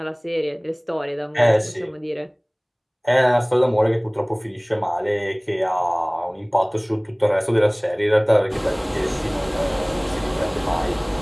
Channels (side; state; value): both; identical; correlation 1.00